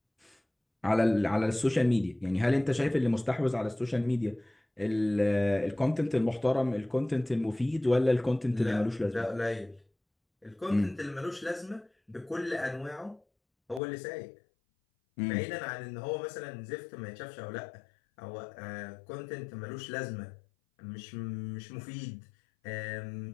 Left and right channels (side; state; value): right; drops out; at 13.8 s